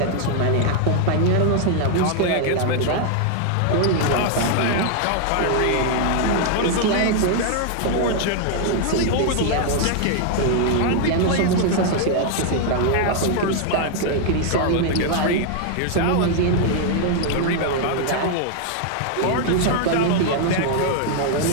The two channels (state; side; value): different; both; correlation 0.00